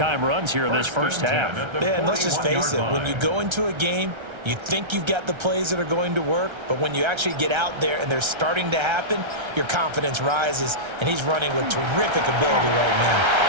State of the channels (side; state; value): left; late; 1.3 ms